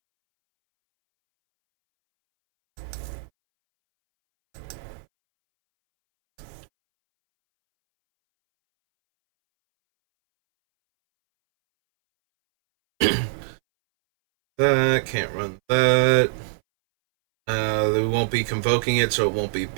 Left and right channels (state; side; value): silent; left; 64 dB below the other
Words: That, can't run that. We won't be convoking it, so it won't be